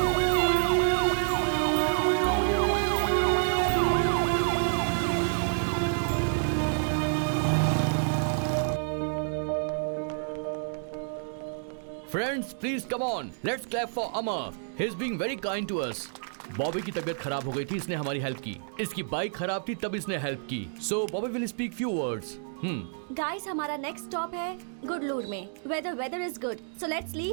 Friends please come on, let's clap for Amar. He is being very kind to us. Bobby की तबीयत खराब हो गई थी, इसने हमारी हेल्प की। इसकी बाइक खराब थी, तब इसने हेल्प की। So Bobby will speak few words. Guys, हमारा नेक्स्ट स्टॉप है गुडलूर में, where the weather is good. So let's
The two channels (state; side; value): silent; left; digital silence